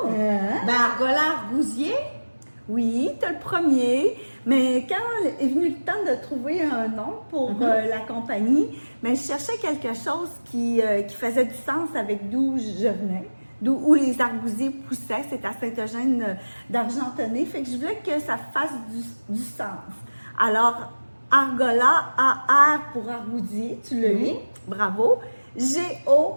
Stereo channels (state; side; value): inverted; both; correlation -1.00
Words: Ben argola argousier? Oui, tu as le premier, mais quand est venu le temps de trouver un nom pour la compagnie, je cherchais quelque chose qui faisait du sens avec d'où je venais, où les argousiers poussaient. C'est à Saint-Eugène d'Argentonnay, fait que je voulais que ça fasse du sens. Alors, argola, A-R pour argousier, tu l'as eu, bravo. G-O